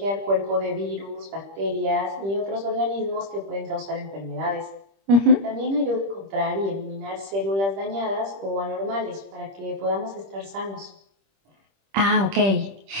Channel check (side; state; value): left; late; 25 ms